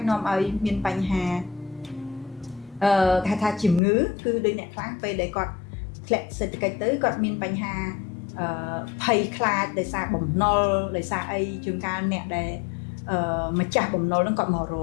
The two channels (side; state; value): right; drops out; at 3.8 s